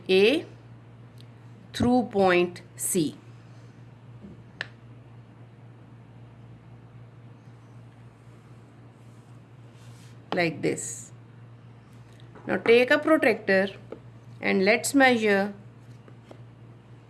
A through point C. Like this. Now take a protractor and let's measure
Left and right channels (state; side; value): identical; both; correlation 1.00